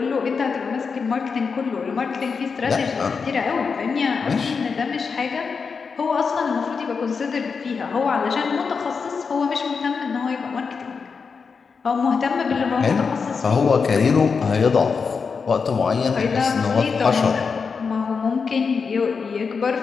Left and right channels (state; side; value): quieter; right; 5.4 dB